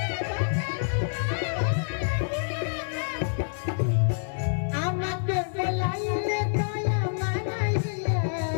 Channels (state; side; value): silent; right; 60 dB below the other